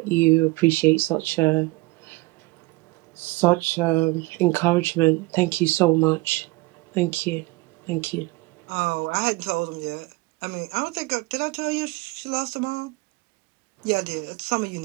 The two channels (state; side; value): quieter; left; 23.0 dB